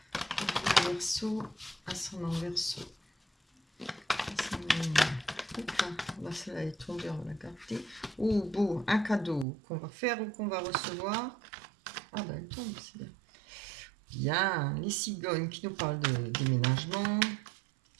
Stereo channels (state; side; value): drops out; left; at 9.5 s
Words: Pour vous, les Verseau, ascendant Verseau. Là, celle-là est tombée, on va la garder. Oh, beau, un cadeau qu'on va faire ou qu'on va recevoir. Ah ben, elle tombe, c'est bien. Bien, les cigognes qui nous parlent de déménagement,